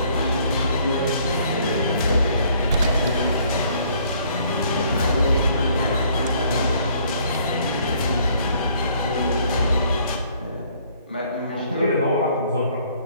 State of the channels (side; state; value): both; inverted; correlation -0.62